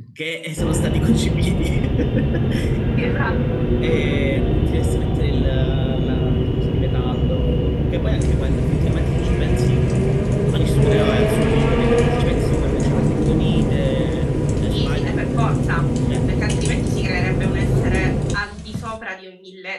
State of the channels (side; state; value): both; identical; correlation 1.00